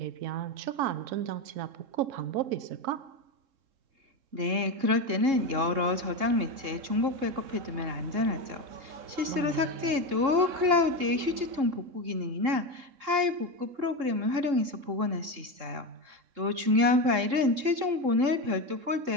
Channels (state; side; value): late; left; 3.7 ms